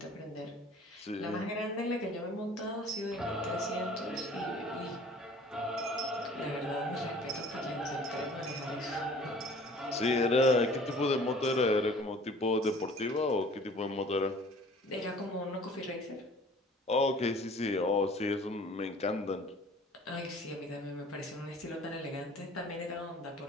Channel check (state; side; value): normal; both; correlation 0.50